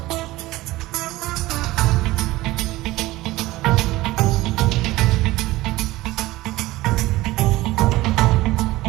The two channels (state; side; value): quieter; left; 18.3 dB